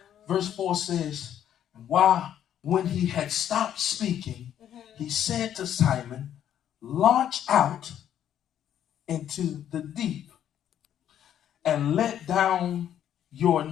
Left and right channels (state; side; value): quieter; right; 10.3 dB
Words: Verse 4 says, when he had stopped speaking, he said to Simon, launch out into the deep and let down your